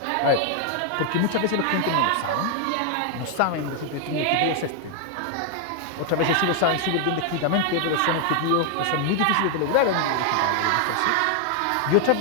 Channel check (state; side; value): different; both; correlation 0.00